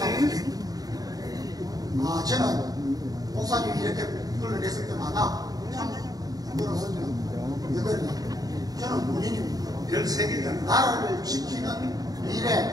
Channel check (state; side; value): late; left; 0.18 ms